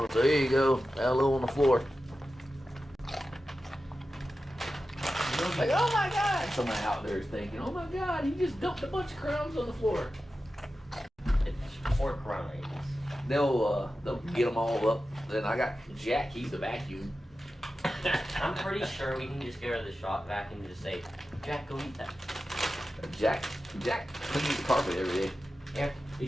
So here you go. Hello on the floor. Like, oh my God. Somebody out there is thinking, oh my God, he just dumped a bunch of crumbs on the floor. It's 4 crumbs. They'll get them all up. Then I got Jack, he's the vacuum. I'm pretty sure we can just get rid of the shop vacuum and just say, Jack, go eat that. Jack cleans the carpet every day. Yeah. He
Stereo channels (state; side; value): normal; both; correlation 0.93